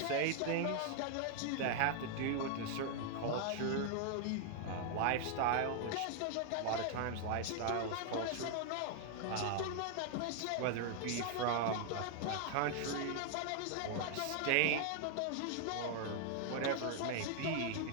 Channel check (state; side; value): different; both; correlation 0.00